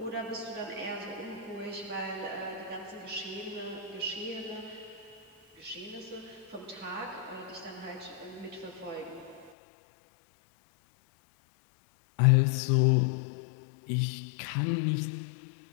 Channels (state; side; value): drops out; right; at 9.5 s